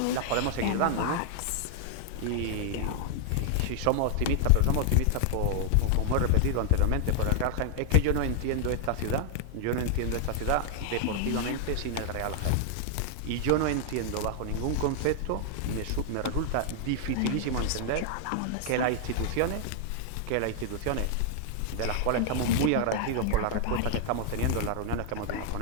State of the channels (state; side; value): different; both; correlation 0.00